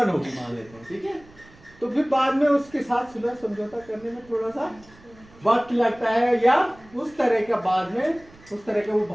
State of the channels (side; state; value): right; noise; rumble, 25 dB below the sound